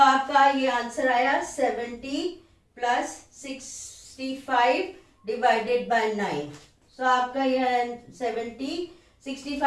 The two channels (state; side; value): identical; both; correlation 1.00